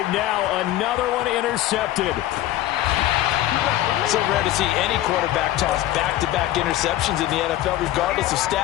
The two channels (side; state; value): right; quieter; 14.2 dB